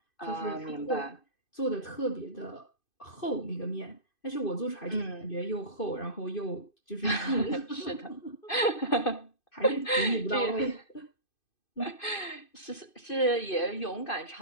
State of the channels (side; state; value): right; late; 2.5 ms